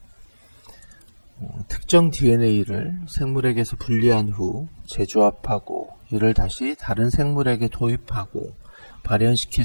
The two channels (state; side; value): inverted; both; correlation -1.00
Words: 특정 DNA를 생물에게서 분리한 후 재조합하고 이를 다시 다른 생물에게 도입하고 발현시킬